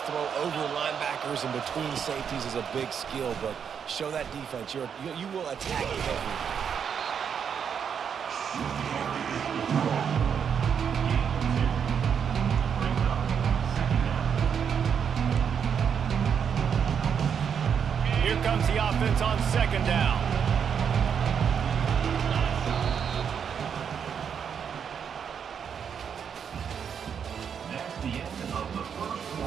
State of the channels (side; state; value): left; quieter; 7.4 dB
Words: throw over linebackers and between safeties is a big skill. But show that defense. You will attack it everywhere. Here comes the offense on 2nd down. That's the end of the first